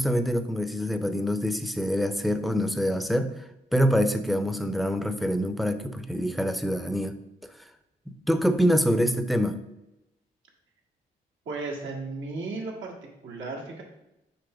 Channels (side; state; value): both; normal; correlation 0.87